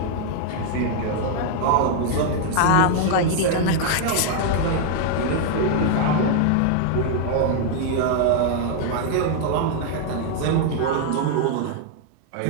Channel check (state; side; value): different; both; correlation 0.00